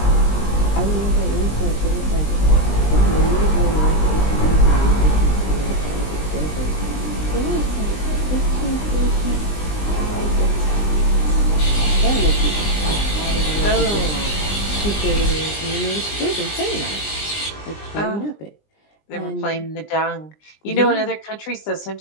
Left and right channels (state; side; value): late; right; 20 ms